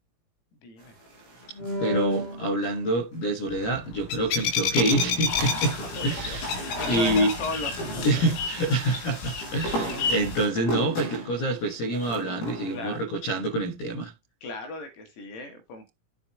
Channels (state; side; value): late; right; 17 ms